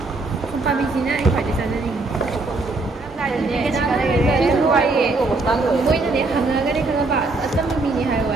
Không phải mình xin á, anh phải đi sang đây đi. Cái gì cái đây? Mỗi lần đến hàng cái đây không phải Assam mình hay vậy.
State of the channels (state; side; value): quieter; left; 3.4 dB